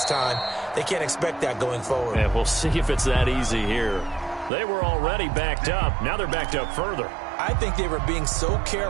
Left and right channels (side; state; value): left; drops out; at 4.5 s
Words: time. They can't expect that going forward. And we'll see if it's that easy here. They were already backed up. Now they're backed up further. I think they were being so